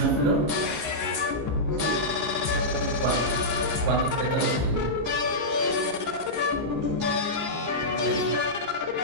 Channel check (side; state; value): left; late; 14 ms